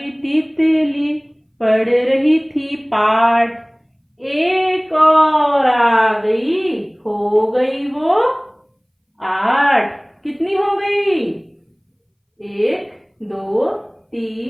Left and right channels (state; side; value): identical; both; correlation 1.00